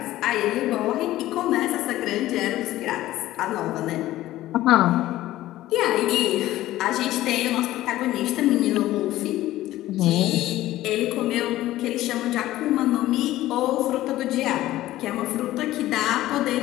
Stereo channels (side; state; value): right; quieter; 15.3 dB